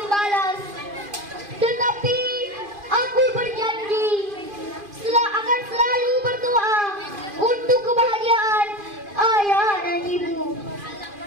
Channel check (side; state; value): left; late; 2.5 ms